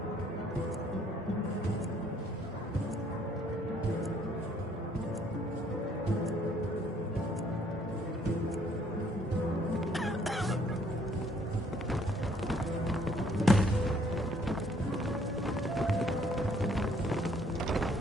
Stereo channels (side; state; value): both; normal; correlation 0.64